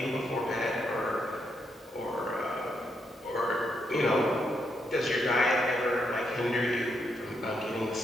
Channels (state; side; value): normal; both; correlation 0.79